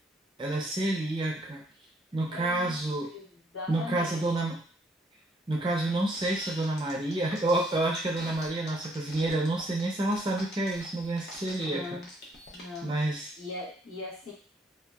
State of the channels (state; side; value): normal; both; correlation 0.68